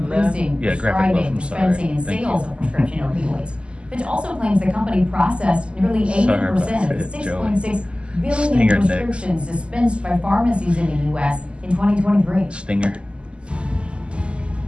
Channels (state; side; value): late; left; 0.052 ms